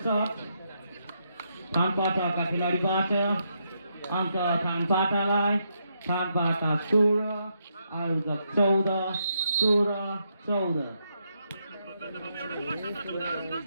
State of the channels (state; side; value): inverted; both; correlation -0.79